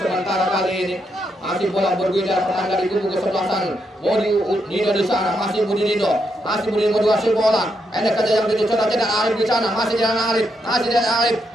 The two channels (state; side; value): normal; both; correlation 0.80